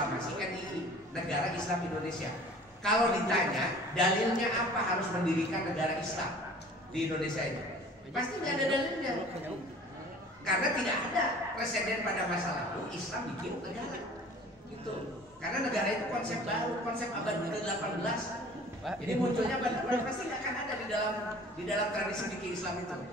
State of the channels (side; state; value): both; normal; correlation 0.47